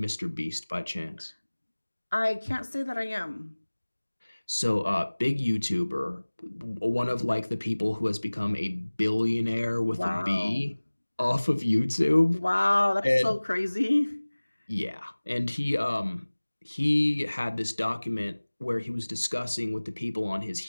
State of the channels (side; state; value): both; inverted; correlation -1.00